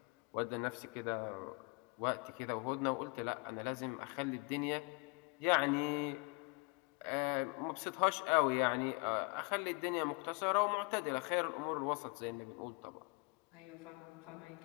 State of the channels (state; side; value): quieter; right; 30.6 dB